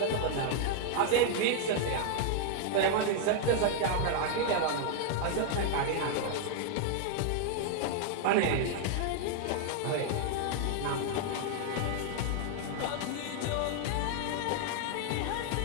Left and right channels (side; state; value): both; different; correlation -0.01